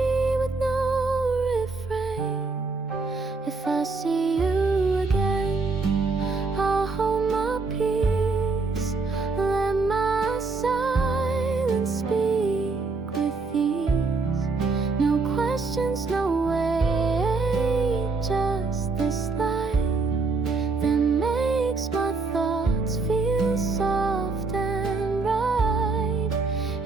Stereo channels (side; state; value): left; quieter; 4.0 dB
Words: with no refrain. If I see you again, I'll hold my peace, let my silence speak with ease. No questions, no way, just this light that makes my thoughts feel soft and right.